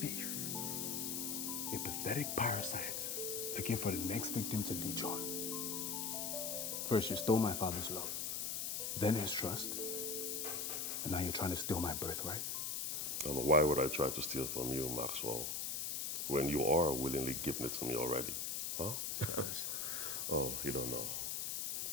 a pathetic parasite, looking for the next victim to leech on. First, you stole my father's love, then his trust, and now you're trying to steal my birthright. And why would I try to steal from you, Maxwell, when you are willingly giving it to me already? Huh? Oh, you don't know.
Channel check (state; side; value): noise; left; hiss, 1 dB below the sound